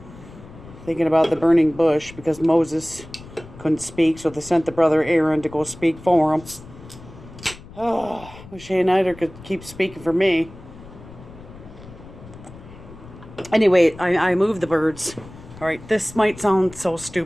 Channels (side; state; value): left; noise; rumble, 18 dB below the sound